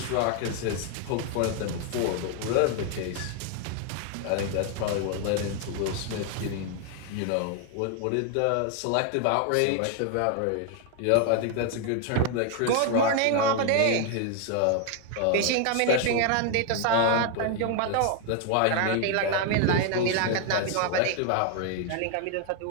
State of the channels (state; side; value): different; both; correlation 0.00